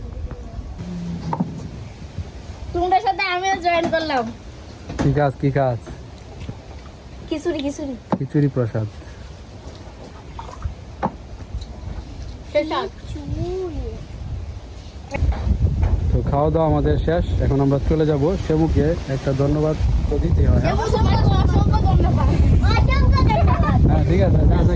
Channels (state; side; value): identical; both; correlation 1.00